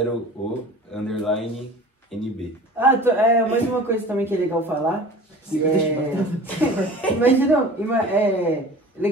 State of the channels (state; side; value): normal; both; correlation 0.41